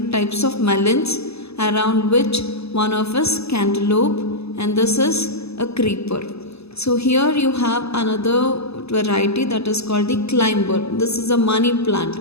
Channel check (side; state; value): right; late; 0.79 ms